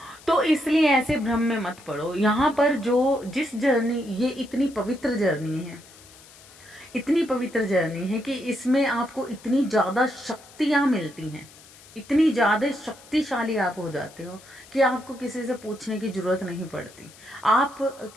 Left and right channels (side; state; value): left; noise; hiss, 22 dB below the sound